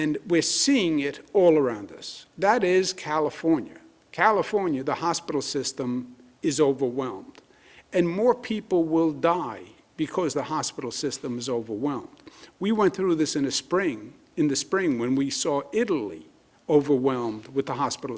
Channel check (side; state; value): both; identical; correlation 1.00